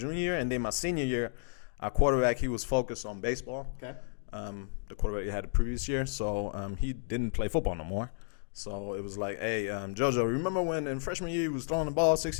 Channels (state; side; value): silent; right; digital silence